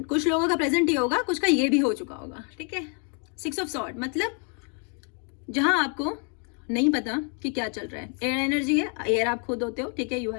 कुछ लोगों का प्रेजेंट ये होगा, कुछ का ये भी हो चुका होगा, ठीक है। 6 ऑफ सॉर्ड मतलब जहां आपको नहीं पता कि क्या चल रहा है, एयर एनर्जी है, एयर आप खुद होते हो, ठीक है, यू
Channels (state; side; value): quieter; right; 39.3 dB